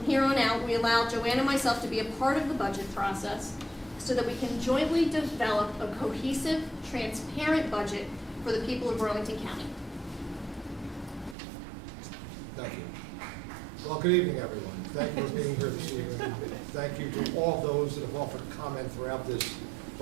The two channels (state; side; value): drops out; left; at 11.4 s